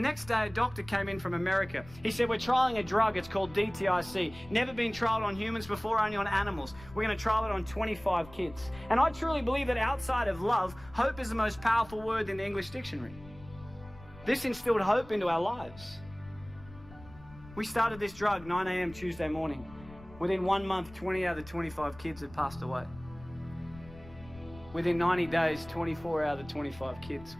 day, a doctor came in from America. He said, we're trialing a drug, it's called DTIC. Never been trialed on humans before, only on animals. We're going to trial it on 25 kids. And I truly believe that outside of love, hope is the most powerful word in the English dictionary. This instilled hope into our lives. We started this drug 9 a.m. Tuesday morning. Within 1 month, 20 out of the 25 kids had passed away. Within 90 days, 24 out of the 25 kids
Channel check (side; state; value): left; noise; rumble, 19 dB below the sound